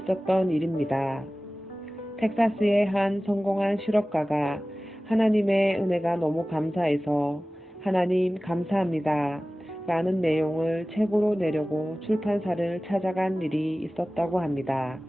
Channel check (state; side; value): normal; both; correlation 0.97